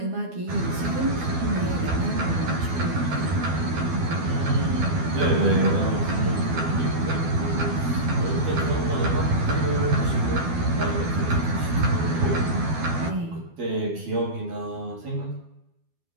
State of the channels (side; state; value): left; late; 12 ms